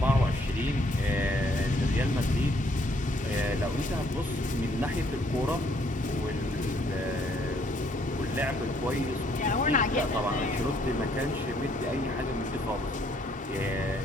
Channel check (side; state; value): both; normal; correlation 0.67